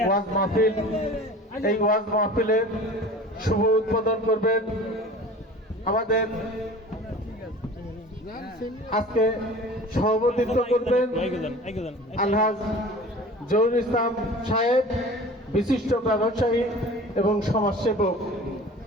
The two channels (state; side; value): normal; both; correlation 0.41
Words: মাহফিল, এই ওয়াজ মাহফিলের শুভ উদ্বোধন করবেন আমাদের আজকে সভাপতিত্ব করবেন আলহাজ জহুরুল ইসলাম সাহেব, বিশিষ্ট ব্যবসায়ী এবং সমাজসেবক।